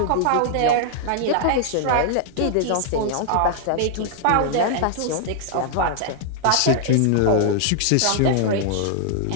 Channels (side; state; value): both; different; correlation -0.01